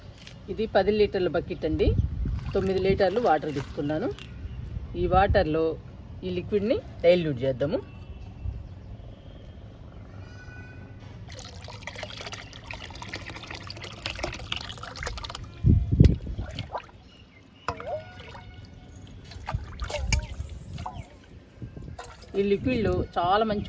ఇది 10 లీటర్ల బకెట్ అండి. 9 లీటర్లు వాటర్ తీసుకున్నాను. ఈ వాటర్లో ఈ లిక్విడ్ని డైల్యూట్ చేద్దాము. ఈ లిక్విడ్లో చాలా మంచి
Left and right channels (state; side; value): identical; both; correlation 1.00